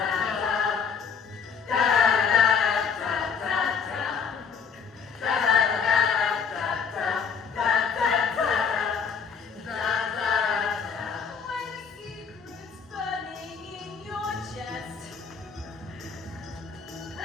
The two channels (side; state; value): right; quieter; 6.3 dB